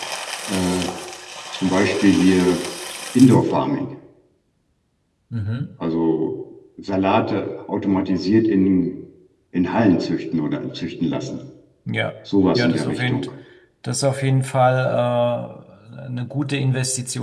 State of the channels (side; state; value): both; identical; correlation 1.00